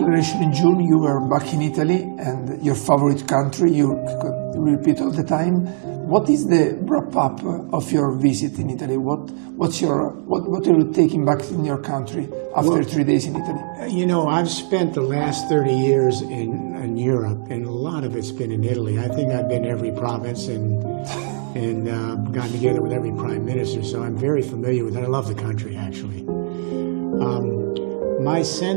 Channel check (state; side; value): silent; left; digital silence